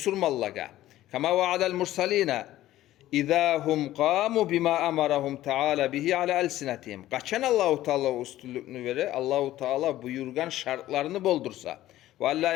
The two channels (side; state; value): right; quieter; 14.5 dB